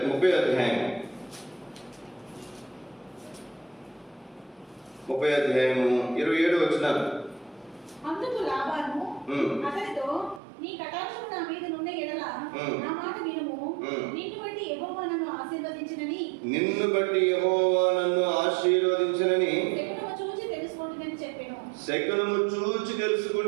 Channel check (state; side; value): drops out; left; at 10.4 s